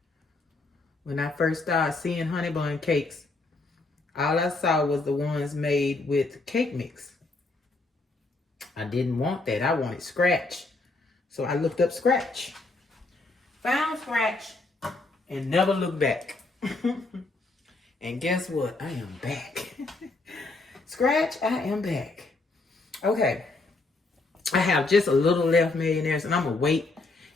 When I first started seeing Honeybun cakes, all I saw was the ones made with cake mix. I didn't want that. I wanted scratch. So I looked up scratch. Found scratch and never looked back. And guess what? I am back. Scratch, I am back. Okay. I have just a little left, millionaires, and I'm going to wait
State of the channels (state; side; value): quieter; right; 3.4 dB